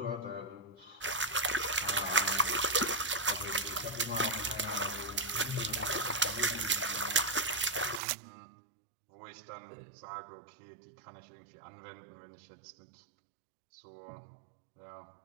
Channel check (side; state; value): left; drops out; at 8.0 s